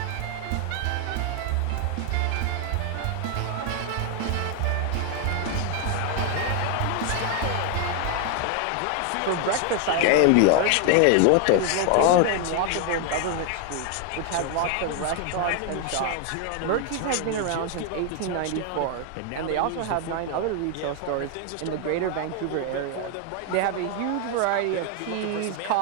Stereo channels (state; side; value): different; both; correlation 0.00